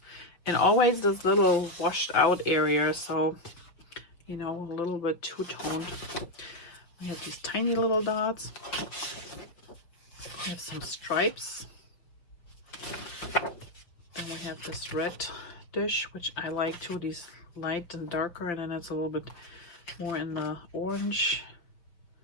and always this little washed out area, so you know, a little bit two-toned. We have these tiny little dots. We have some stripes. we have this red dish, which I like too, these light and darker, and then it's a little bit more in the orange.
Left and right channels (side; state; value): right; late; 5.9 ms